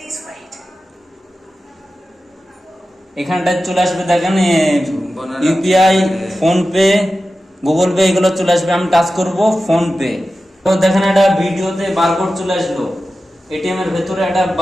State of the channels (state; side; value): normal; both; correlation 0.93